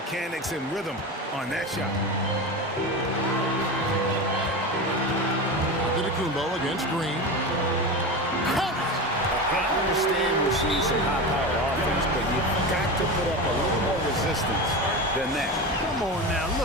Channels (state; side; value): normal; both; correlation 0.24